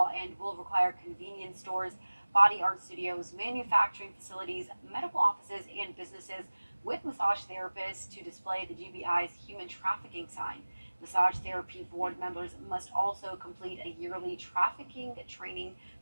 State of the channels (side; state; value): both; inverted; correlation -1.00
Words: and will require convenience stores, body art studios, manufacturing facilities, medical offices, and businesses with massage therapists to display the GBI's human trafficking sign. Massage therapy board members must also complete a yearly trafficking training